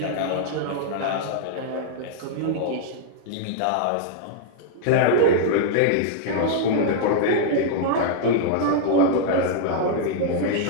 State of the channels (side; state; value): both; different; correlation -0.01